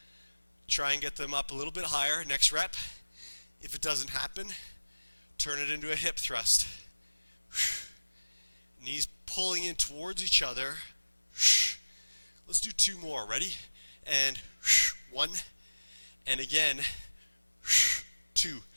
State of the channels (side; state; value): both; inverted; correlation -1.00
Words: Try and get them up a little bit higher. Next rep. If it doesn't happen, turn it into a hip thrust. Knees pulling in towards each other. Let's do 2 more. Ready? And 1. And again. 2.